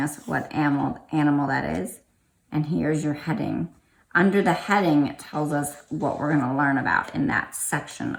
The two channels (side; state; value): both; identical; correlation 1.00